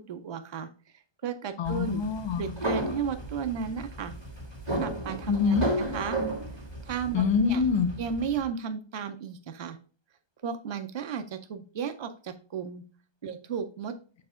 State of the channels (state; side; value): late; right; 1.3 ms